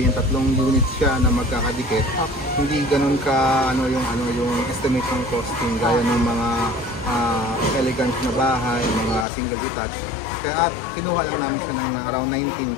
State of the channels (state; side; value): drops out; right; at 9.2 s